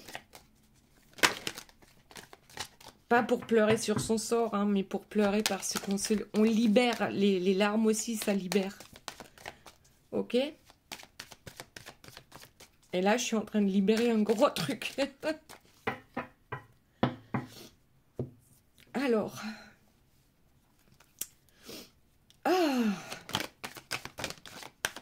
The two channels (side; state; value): both; identical; correlation 1.00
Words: Pas pour pleurer sur son sort, hein, mais pour pleurer parce qu'on libère. Les larmes aussi, ça libère. Ok? Et là, je suis en train de libérer un gros truc. Alors. Ah.